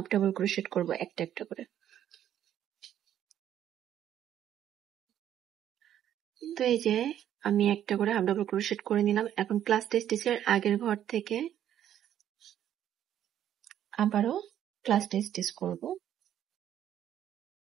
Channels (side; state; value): left; quieter; 10.8 dB